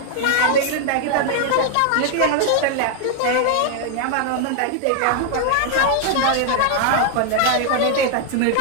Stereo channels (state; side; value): different; both; correlation 0.00